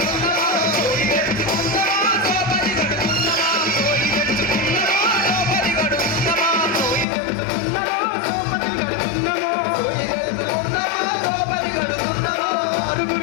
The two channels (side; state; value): right; drops out; at 7.1 s